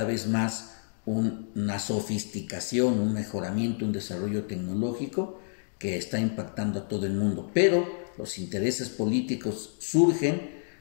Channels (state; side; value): silent; right; digital silence